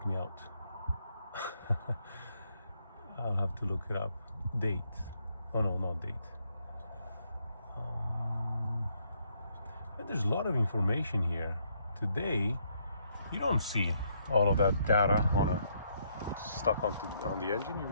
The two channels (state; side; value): inverted; both; correlation -0.73